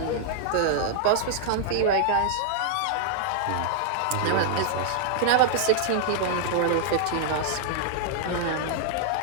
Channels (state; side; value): different; both; correlation -0.01